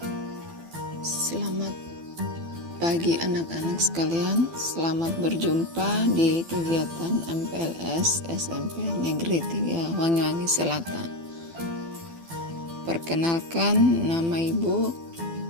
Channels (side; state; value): left; late; 12 ms